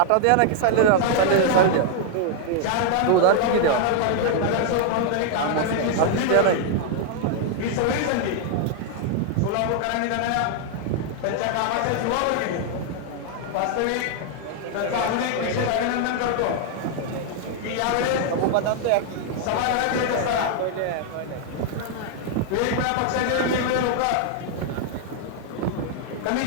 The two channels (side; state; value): both; different; correlation 0.00